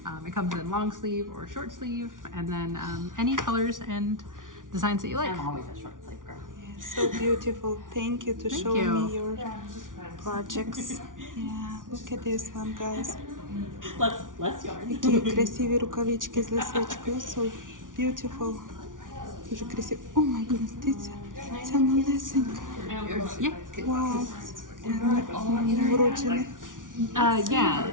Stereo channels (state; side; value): late; left; 0.88 ms